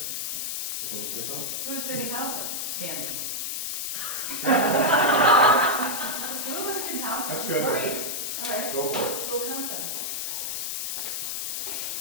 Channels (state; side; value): noise; left; hiss, 2 dB below the sound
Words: Someone say something? Who's going to help them? Standing. Who was going to help them? That's good. Great. All right, Go for it. we'll count them.